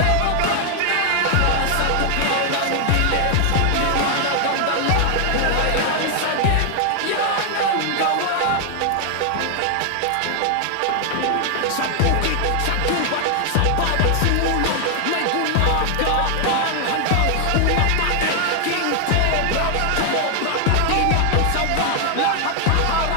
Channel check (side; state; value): both; different; correlation 0.00